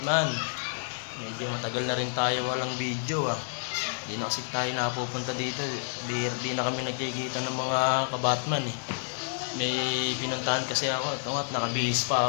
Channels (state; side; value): silent; right; 57 dB below the other